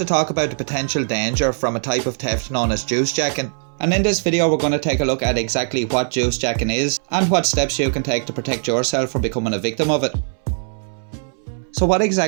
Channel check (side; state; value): left; silent; 64 dB below the other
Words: talk about the potential danger from a type of theft known as juicejacking. And in this video we're going to take a look at exactly what juicejacking is and what steps you can take to protect yourself from becoming a victim of it. So what